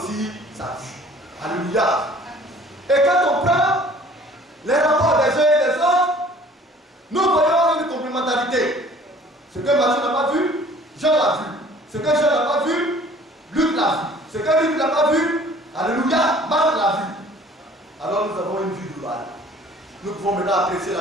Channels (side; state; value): both; normal; correlation 0.52